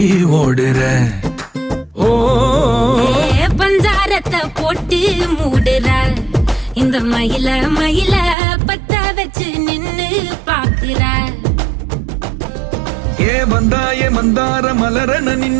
ஓடுற. ஓ பஞ்சாரத்தை போட்டு மூடுற இந்த மயில மயில பத்த வச்சு நின்னு பாக்குற. ஏ வந்தாய மந்தார மலரன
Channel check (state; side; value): drops out; left; at 8.3 s